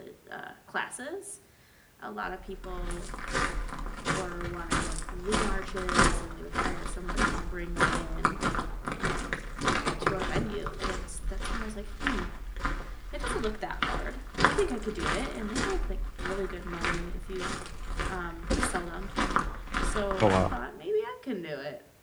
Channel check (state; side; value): identical; both; correlation 1.00